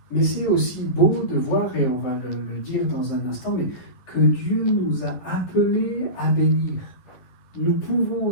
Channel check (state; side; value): late; right; 11 ms